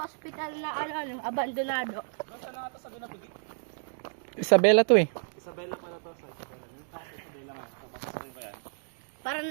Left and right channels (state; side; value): silent; left; digital silence